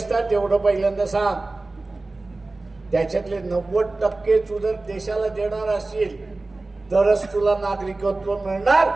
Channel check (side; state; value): left; quieter; 3.2 dB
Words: ना तेवढं पहिल्यांदा सांग. त्याच्यातले 90% तू जर देशाला देणार असेल तरच तुला नागरिकत्व मिळणार